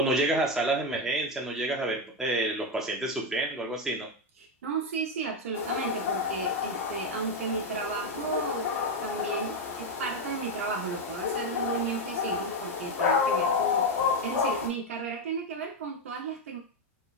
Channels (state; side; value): normal; both; correlation 0.08